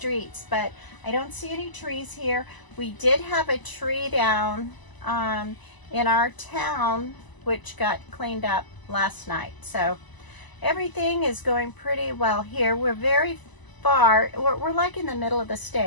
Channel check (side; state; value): right; late; 1.0 ms